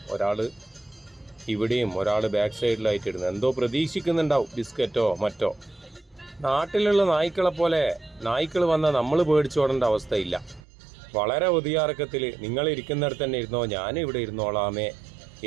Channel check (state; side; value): drops out; left; at 10.6 s